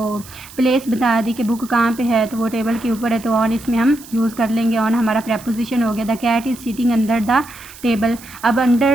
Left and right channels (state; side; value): noise; right; hiss, 19 dB below the sound